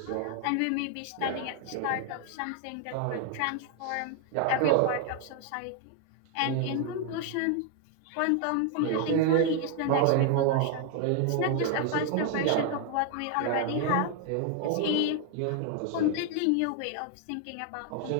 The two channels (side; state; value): both; different; correlation 0.00